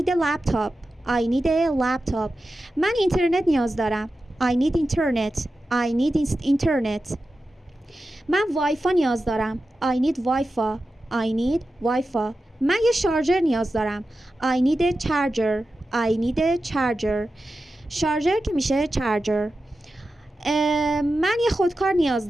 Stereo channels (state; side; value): normal; both; correlation 0.92